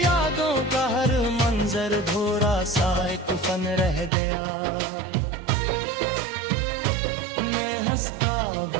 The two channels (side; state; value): left; drops out; at 4.1 s